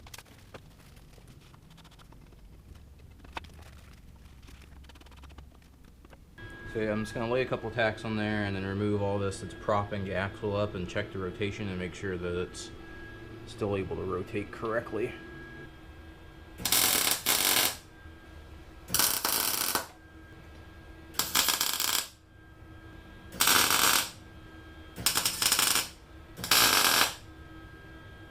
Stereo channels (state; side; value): identical; both; correlation 1.00